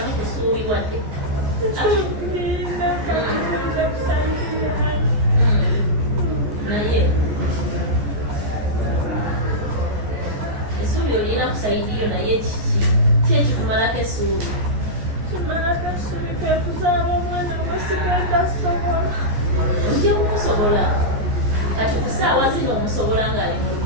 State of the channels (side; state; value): left; late; 14 ms